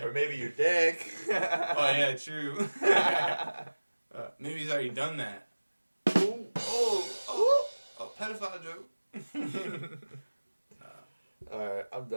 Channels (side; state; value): both; inverted; correlation -1.00